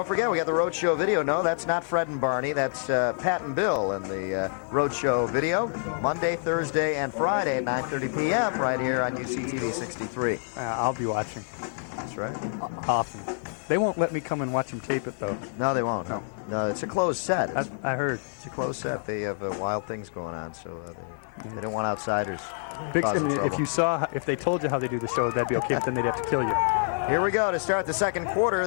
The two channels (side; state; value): right; silent; 60 dB below the other